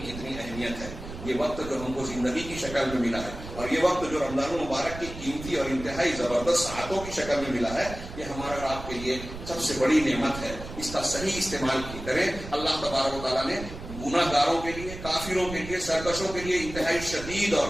اہمیت ہے. یہ وقت جو ہم کو زندگی کی شکل میں ملا ہے، اور یہ وقت جو رمضان المبارک کی قیمتی اور انتہائی زبردست ساعتوں کی شکل میں ملا ہے، یہ ہمارا اور آپ کے لیے سب سے بڑی نعمت ہے. اس کا صحیح استعمال کریں. اللہ تبارک و تعالیٰ نے گناہ گاروں کے لیے، کافروں کے لیے، سرکشوں کے لیے انتہائی شدید اور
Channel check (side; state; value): right; noise; rumble, 11 dB below the sound